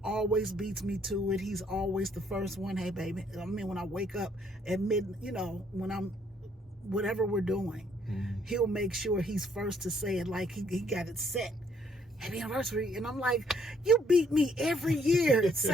always beats me to it. He's always the first one. Hey, baby. I mean, when I wake up at when I'm, whatever we're doing, he'll make sure he's first to say it, like he got it set. happy anniversary. And I'm like, you beat me every year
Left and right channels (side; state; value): both; normal; correlation 0.67